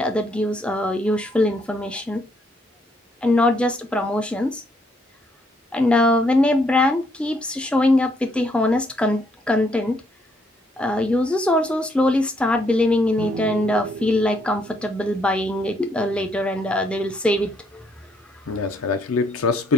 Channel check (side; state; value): both; normal; correlation 0.71